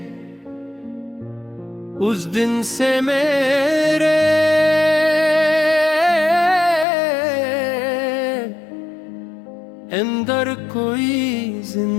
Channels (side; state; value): right; drops out; at 6.9 s